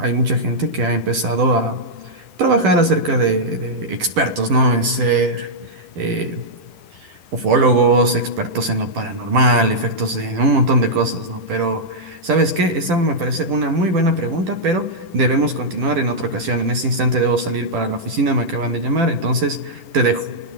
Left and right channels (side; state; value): left; late; 11 ms